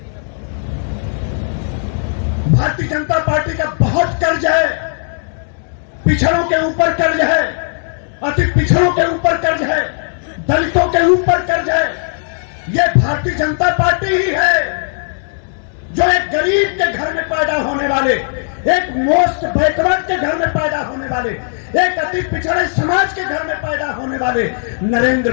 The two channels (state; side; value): silent; right; digital silence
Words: भारतीय जनता पार्टी का बहुत कर्ज है, पिछड़ों के ऊपर कर्ज है, अति पिछड़ों के ऊपर कर्ज है, दलितों के ऊपर कर्ज है। यह भारतीय जनता पार्टी ही है जो एक गरीब के घर में पैदा होने वाले, एक मोस्ट बैकवर्ड के घर में पैदा होने वाले, एक अति पिछड़े समाज के घर में पैदा होने वाले नरेंद्र